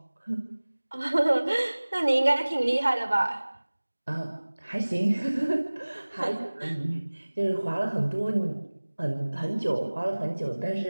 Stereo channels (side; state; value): both; inverted; correlation -1.00